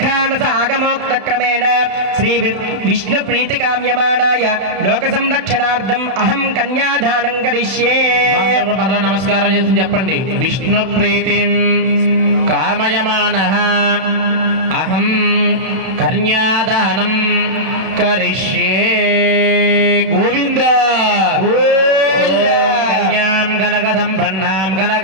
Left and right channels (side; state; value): left; late; 32 ms